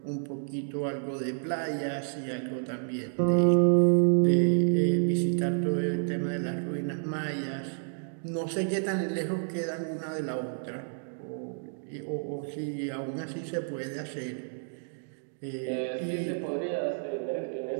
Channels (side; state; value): left; silent; digital silence